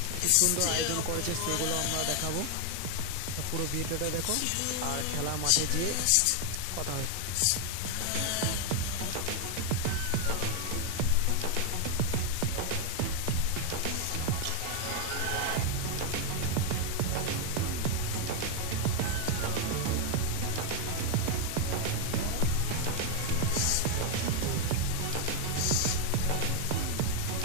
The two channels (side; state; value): both; different; correlation 0.00